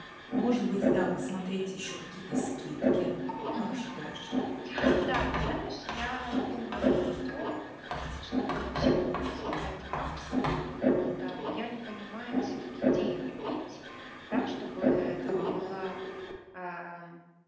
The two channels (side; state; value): both; identical; correlation 1.00